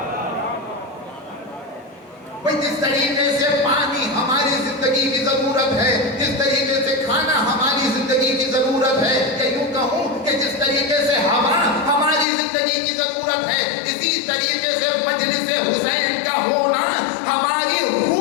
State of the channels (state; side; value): drops out; right; at 12.2 s